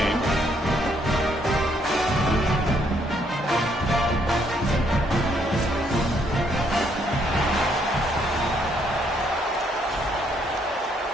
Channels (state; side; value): normal; both; correlation 0.71